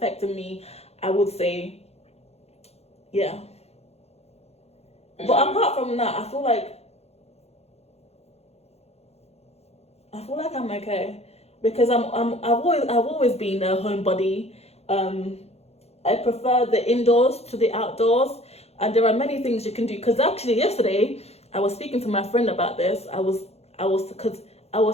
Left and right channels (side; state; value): right; late; 0.30 ms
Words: me, I would say. Yeah. But apart from that, I feel like I'm okay because I've always been a homebody. I prefer the indoors to the outdoors, and there are many things you can do. Because actually yesterday I was speaking to my friend about this. I was